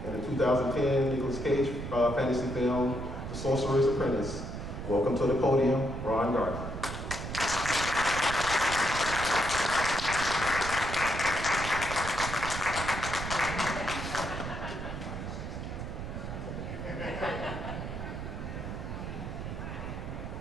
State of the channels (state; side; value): noise; right; rumble, 6 dB below the sound